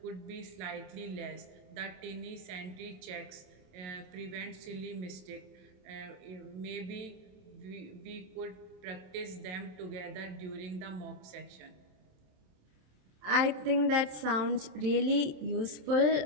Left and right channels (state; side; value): late; left; 27 ms